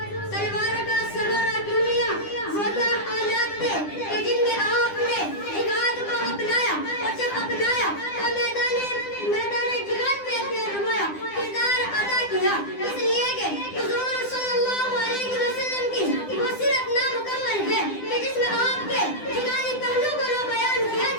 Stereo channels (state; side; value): late; right; 9.9 ms